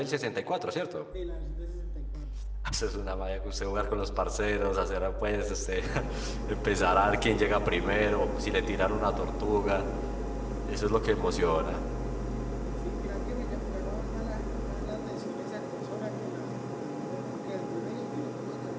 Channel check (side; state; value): both; identical; correlation 1.00